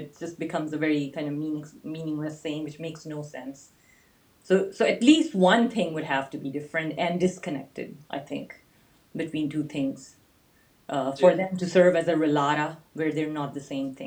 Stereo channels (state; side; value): identical; both; correlation 1.00